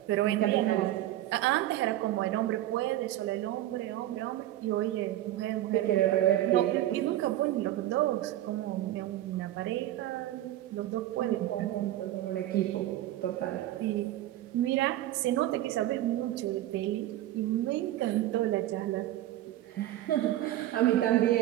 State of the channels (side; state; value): left; quieter; 14.1 dB